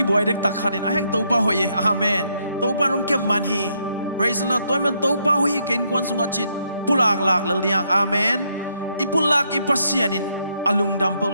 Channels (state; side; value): inverted; both; correlation -0.75